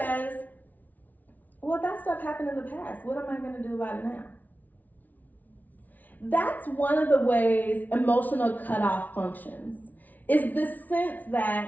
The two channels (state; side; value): late; right; 0.078 ms